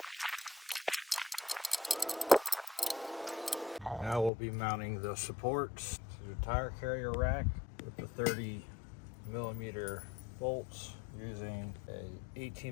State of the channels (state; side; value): drops out; right; at 4.3 s